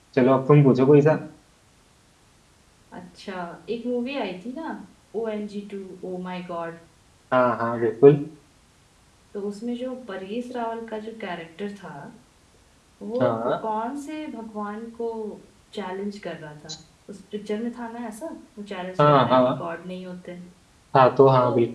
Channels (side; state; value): both; identical; correlation 1.00